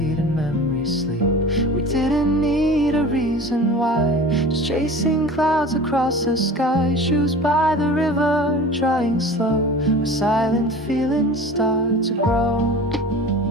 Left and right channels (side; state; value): both; normal; correlation 0.38